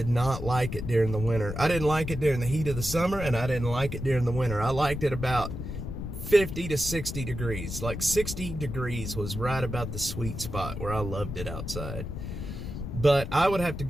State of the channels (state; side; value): noise; left; rumble, 6 dB below the sound